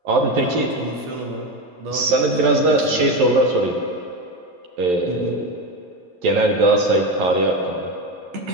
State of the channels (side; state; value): left; late; 11 ms